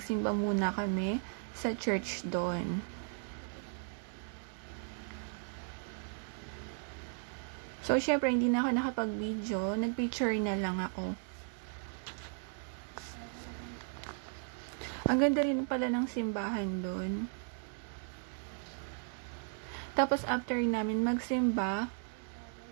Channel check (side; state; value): left; silent; 54 dB below the other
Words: muna kami sa church doon. So, syempre, hindi na ako nakapag-video. Nag-picture na lang ako. Ang ganda rin pala ng simbahan doon. Tapos, after namin magsimba,